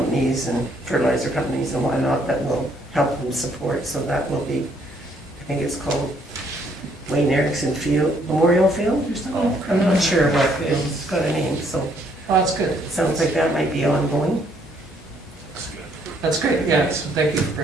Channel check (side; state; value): both; normal; correlation 0.67